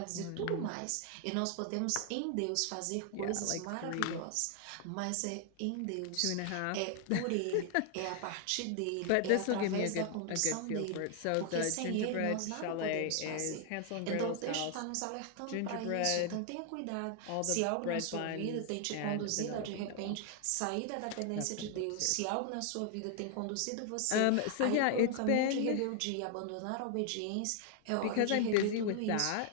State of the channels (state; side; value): different; both; correlation 0.00